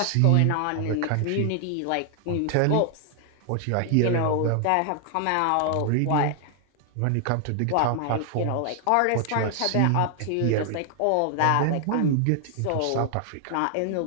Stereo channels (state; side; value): different; both; correlation 0.00